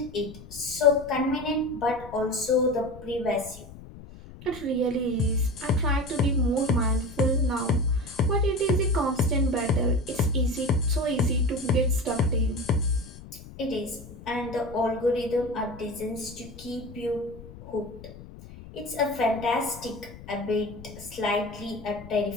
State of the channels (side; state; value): left; noise; rumble, 16 dB below the sound